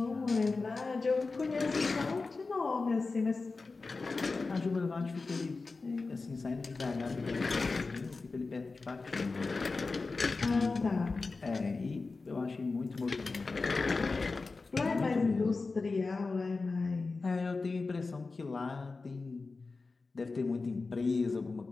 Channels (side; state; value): right; quieter; 3.9 dB